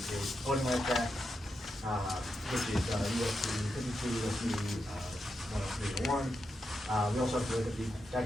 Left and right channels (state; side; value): normal; both; correlation 0.86